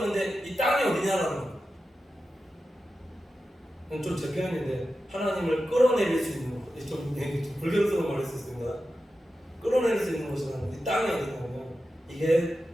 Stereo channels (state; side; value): normal; both; correlation 0.92